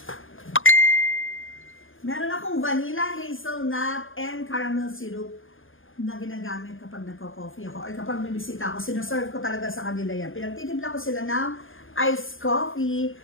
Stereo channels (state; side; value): late; right; 0.59 ms